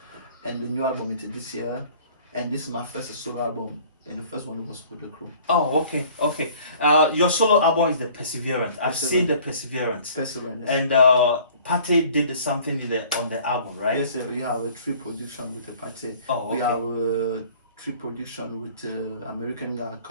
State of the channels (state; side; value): inverted; both; correlation -0.51